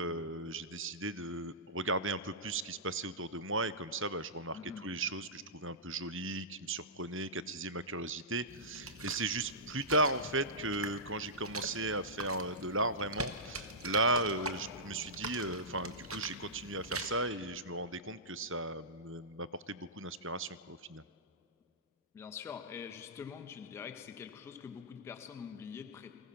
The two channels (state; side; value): normal; both; correlation -0.17